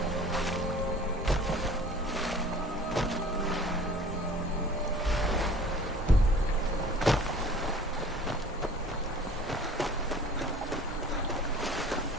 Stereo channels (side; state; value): both; normal; correlation 0.47